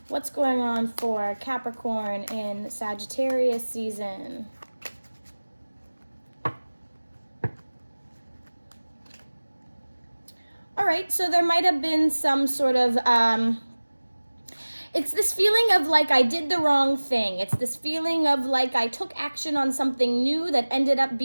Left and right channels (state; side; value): inverted; both; correlation -1.00